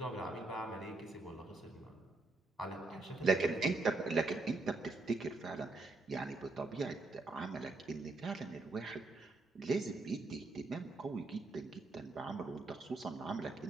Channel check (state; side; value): quieter; left; 3.4 dB